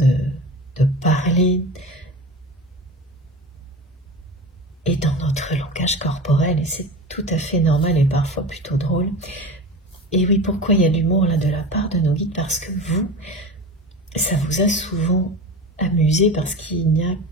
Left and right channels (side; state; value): both; normal; correlation 0.31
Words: parler et dans notre langage corporel. Et c'est tout à fait normal et parfois plutôt drôle. Et oui, pourquoi il y a de l'humour là de la part de nos guides? Parce que vous, ça vous a souvent amusé parce qu'il n'y a